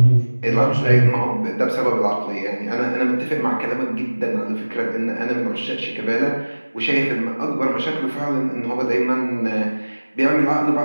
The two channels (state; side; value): inverted; both; correlation -1.00